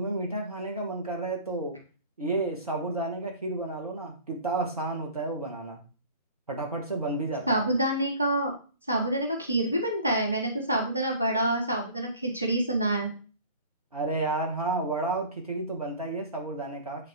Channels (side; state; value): both; inverted; correlation -0.44